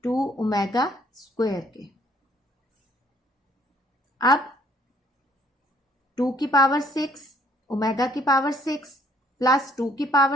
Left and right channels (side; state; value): both; normal; correlation 0.64